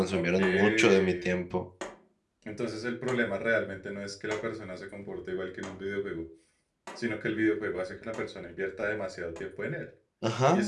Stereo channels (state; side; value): identical; both; correlation 1.00